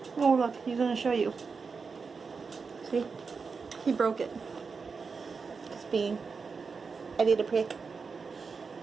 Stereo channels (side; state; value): left; quieter; 5.0 dB